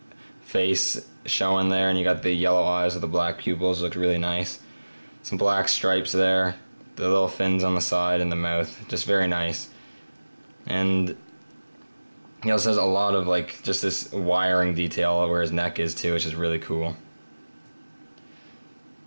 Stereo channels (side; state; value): both; inverted; correlation -1.00